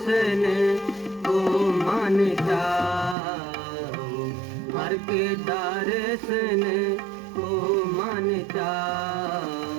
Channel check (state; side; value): drops out; left; at 3.2 s